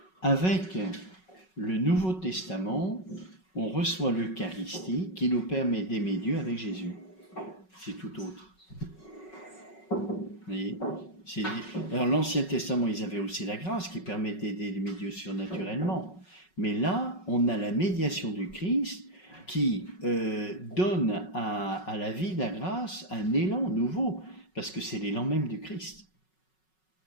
Avec le Nouveau Testament, on reçoit l'Eucharistie qui nous permet d'aimer Dieu avec Jésus. C'est tout autre. Vous voyez ? Alors l'Ancien Testament, ils avaient aussi la grâce qui permettait d'aimer Dieu surnaturellement. Mais là, on a la médiation du Christ qui donne à la vie de la grâce un élan nouveau, parce que c'est l'élan même du Christ.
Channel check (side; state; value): right; late; 5.4 ms